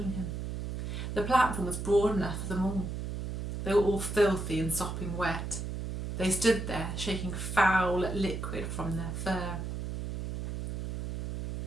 him. The platform was broad enough for them all. They were all filthy and sopping wet. They stood there, shaking foul liquid from their fur.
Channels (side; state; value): right; noise; hum, 4 dB below the sound